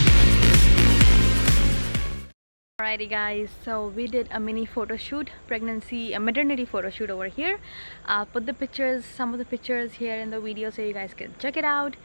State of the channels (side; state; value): both; inverted; correlation -1.00